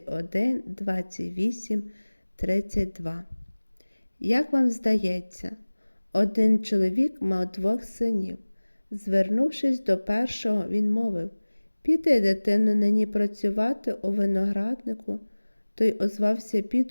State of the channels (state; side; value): inverted; both; correlation -1.00